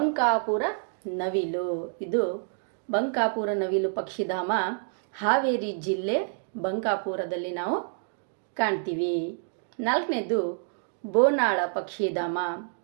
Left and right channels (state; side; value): silent; left; digital silence